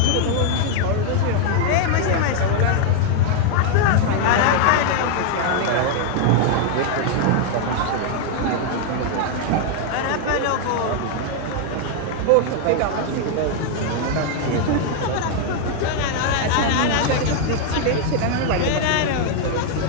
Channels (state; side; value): different; both; correlation 0.00